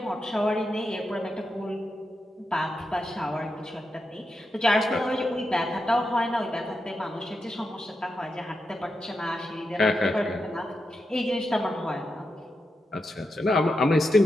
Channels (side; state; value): both; normal; correlation 0.87